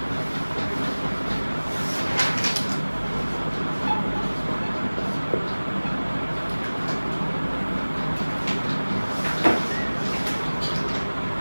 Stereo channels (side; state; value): both; inverted; correlation -1.00